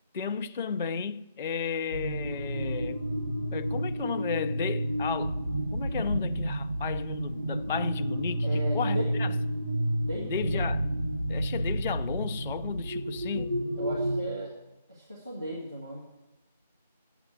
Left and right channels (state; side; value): inverted; both; correlation -0.77